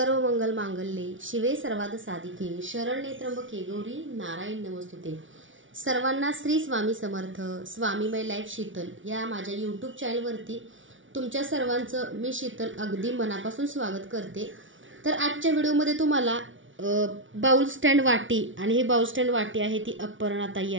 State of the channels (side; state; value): left; late; 0.56 ms